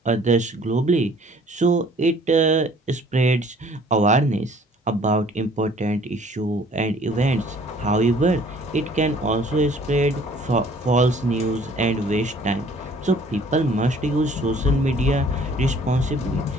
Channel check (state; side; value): normal; both; correlation 0.55